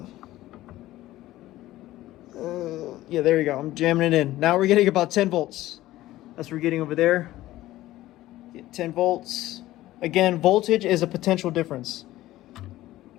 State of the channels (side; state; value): right; quieter; 15.7 dB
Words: Yeah, there you go. I'm jamming it in. Now we're getting about 10 volts. That's what we're getting over there. Get 10 volts. Again, voltage is a potential difference.